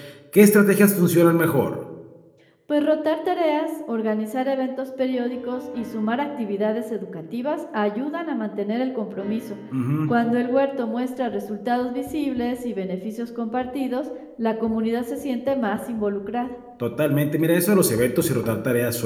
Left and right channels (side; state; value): both; identical; correlation 1.00